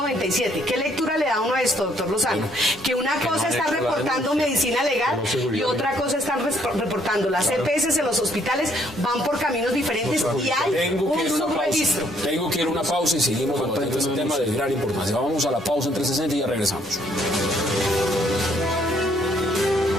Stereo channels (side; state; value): both; normal; correlation 0.67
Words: ¿Qué lectura le da uno a esto, doctor Lozano? Que una cosa está reportando Medicina Legal y otra cosa están reportando las EPS en los hospitales, van por caminos diferentes y hay un subregistro. Tengo que ir a una pausa y seguimos con este tema de gran importancia. Vamos a la pausa en 360 y ya regresamos.